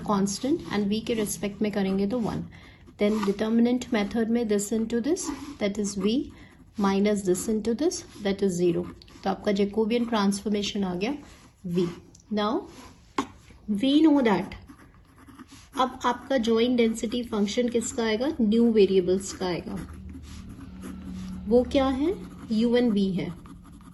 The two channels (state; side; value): identical; both; correlation 1.00